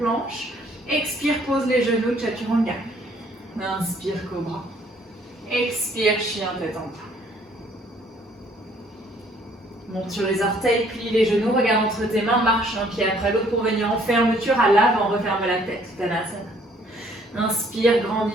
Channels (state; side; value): normal; both; correlation 0.62